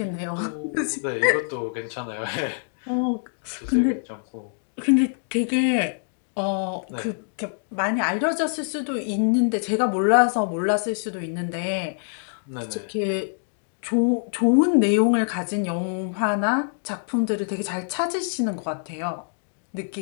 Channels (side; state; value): right; silent; digital silence